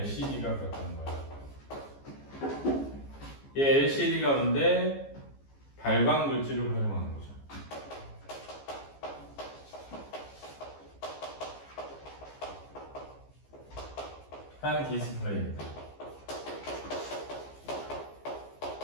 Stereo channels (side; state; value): right; late; 14 ms